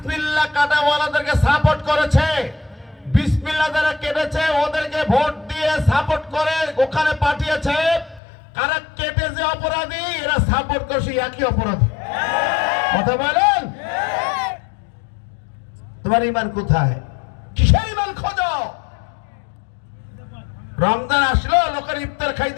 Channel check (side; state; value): right; drops out; at 8.2 s